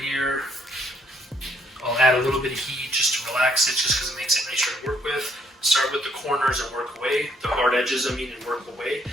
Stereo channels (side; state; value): both; normal; correlation 0.69